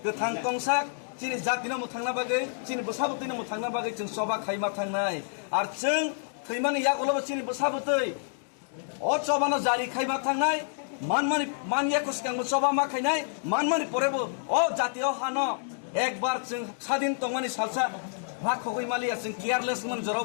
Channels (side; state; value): right; silent; digital silence